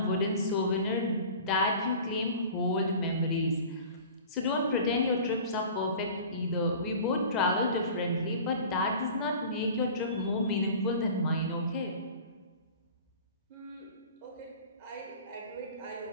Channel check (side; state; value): both; inverted; correlation -0.41